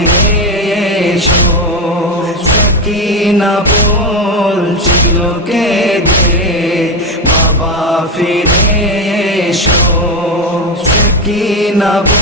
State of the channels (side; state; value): both; normal; correlation 0.11